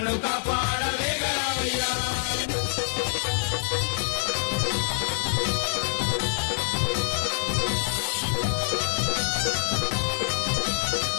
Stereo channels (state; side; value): silent; right; 61 dB below the other